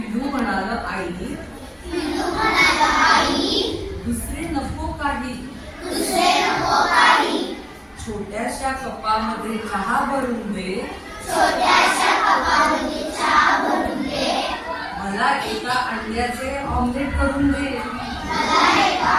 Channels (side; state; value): both; identical; correlation 1.00